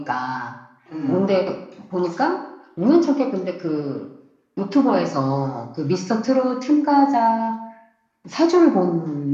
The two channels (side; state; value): both; identical; correlation 1.00